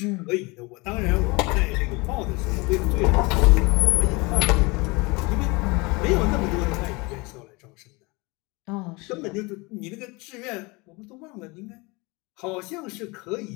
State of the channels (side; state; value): right; quieter; 25.9 dB